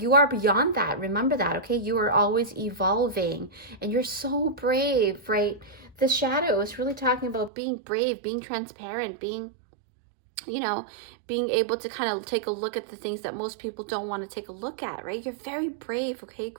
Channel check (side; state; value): left; drops out; at 7.5 s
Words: you are beyond that. Remember that, okay? You are always evolving, and you're so brave, right? The shadow is really talking about being brave, being transparent, being, you know, being able to kind of take a look at the things that most people don't want to take a look at, right? You're very brave, okay?